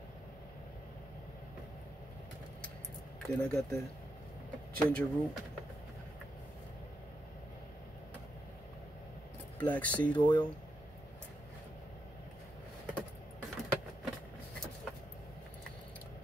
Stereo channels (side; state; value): both; normal; correlation 0.83